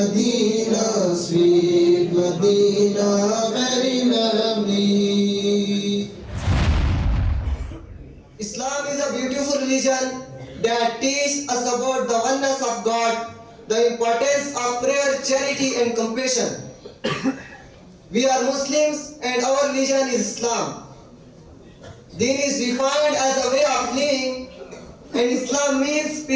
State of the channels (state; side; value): identical; both; correlation 1.00